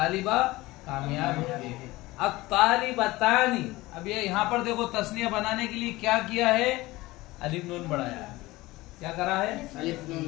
कामयाब है। अब तालिबतानी, अब ये यहाँ पर देखो तस्निया बनाने के लिए क्या किया है? अलिफ नून बढ़ाया है। क्या करा है?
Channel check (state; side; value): quieter; right; 19.6 dB